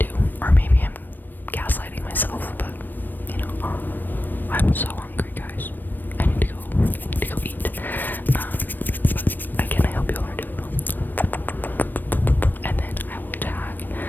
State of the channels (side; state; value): right; late; 0.091 ms